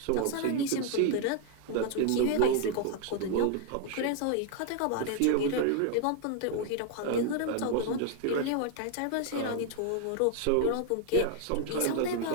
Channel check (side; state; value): both; different; correlation 0.00